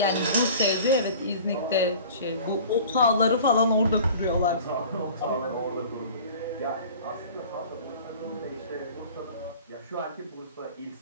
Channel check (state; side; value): inverted; both; correlation -0.43